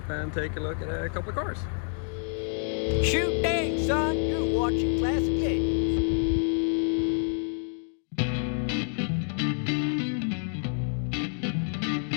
and take a look at a couple of cars. Shoot dang, son, you're watching Classic 80s.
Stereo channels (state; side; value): silent; right; 58 dB below the other